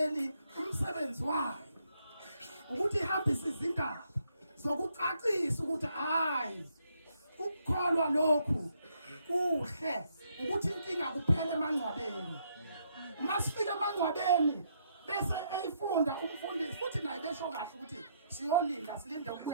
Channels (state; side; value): inverted; both; correlation -0.74